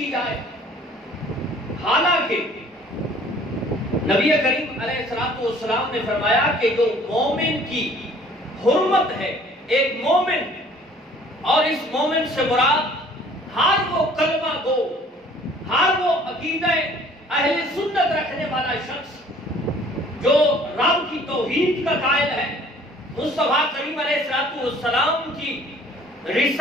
جائے. حالانکہ نبی کریم علیہ السلام نے فرمایا کہ جو مومن کی حرمت ہے، ایک مومن، اور اس مومن سے مراد ہر وہ کلمہ گو، ہر وہ عقیدہ اہل سنت رکھنے والا شخص جو رب کی توحید کا قائل ہے، مصطفیٰ کریم علیہ السلام کی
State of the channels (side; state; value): both; normal; correlation 0.54